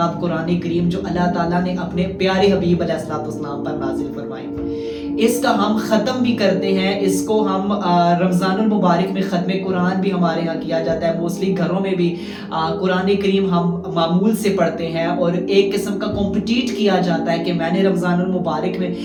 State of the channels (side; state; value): both; identical; correlation 1.00